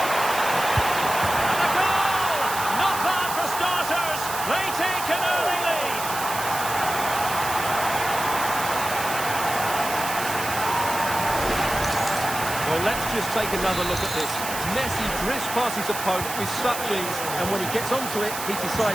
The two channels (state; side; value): noise; right; hiss, 7 dB below the sound